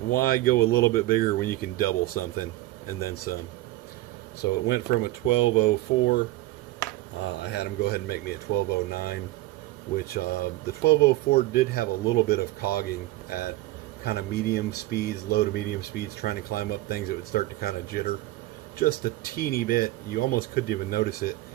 go a little bit bigger when you can double something and then some? So it went from a 1204. I had them go ahead and make me a 1209, which the 1204 did have a little bit of cogging at kind of medium speeds, low to medium speeds, trying to climb up things. It would start to kind of jitter just a teeny bit. You almost couldn't even notice it,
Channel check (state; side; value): quieter; left; 17.5 dB